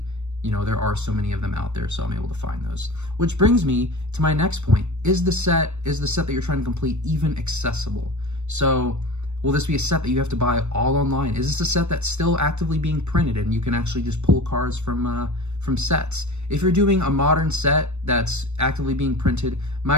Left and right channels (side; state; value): left; late; 0.82 ms